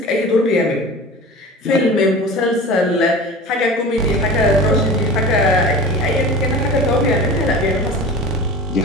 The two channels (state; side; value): normal; both; correlation 0.36